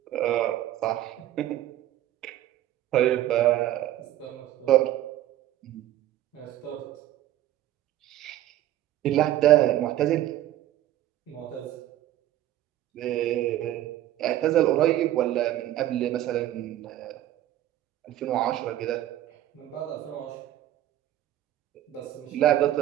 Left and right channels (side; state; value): left; quieter; 13.3 dB